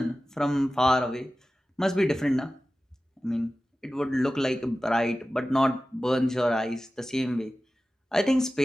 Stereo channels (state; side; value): normal; both; correlation 0.95